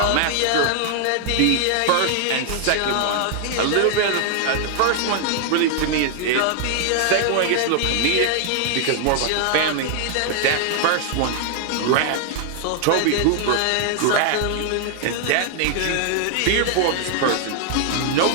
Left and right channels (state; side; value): different; both; correlation 0.00